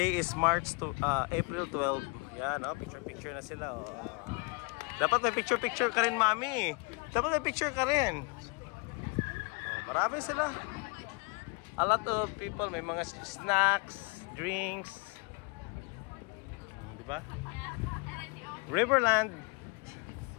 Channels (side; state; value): right; quieter; 30.4 dB